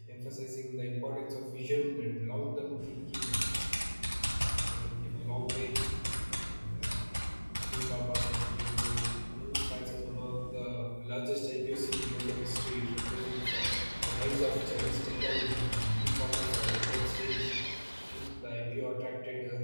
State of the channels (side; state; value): both; inverted; correlation -1.00